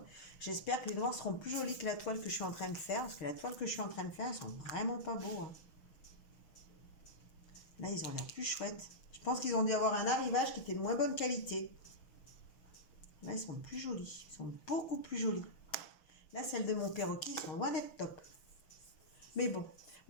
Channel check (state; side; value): late; right; 6.3 ms